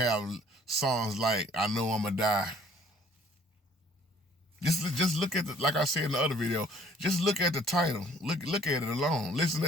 songs like "I Know I'ma Die." Just look at like I said in the other video. Just look at the title. Look at it alone. Listen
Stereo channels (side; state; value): both; normal; correlation 0.57